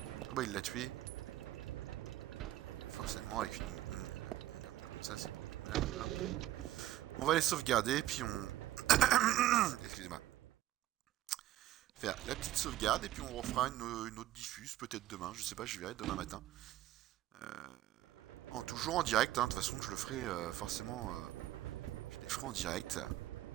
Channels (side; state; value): left; quieter; 14.4 dB